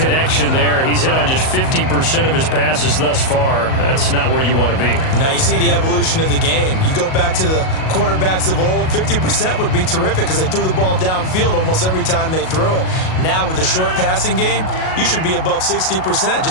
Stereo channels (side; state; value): right; late; 38 ms